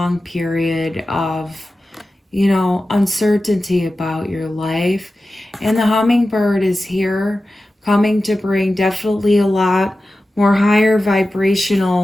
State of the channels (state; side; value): normal; both; correlation 0.94